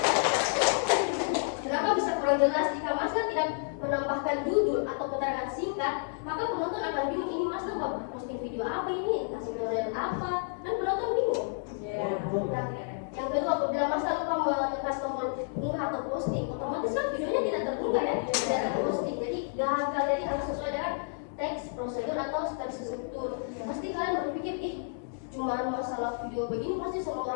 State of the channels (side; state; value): right; silent; digital silence